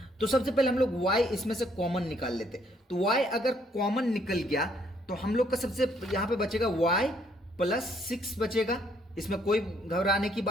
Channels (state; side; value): normal; both; correlation 0.67